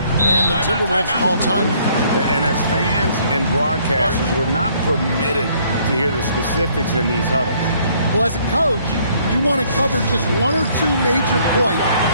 And the Timberwolves call time. And as fans and broadcasters, we're not permitted to hear the specifics in these huddles. Well, as a coach, you want to cover just one or two major points.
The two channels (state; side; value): inverted; both; correlation -0.63